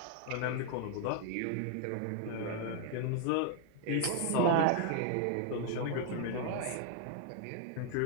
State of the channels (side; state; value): both; different; correlation 0.00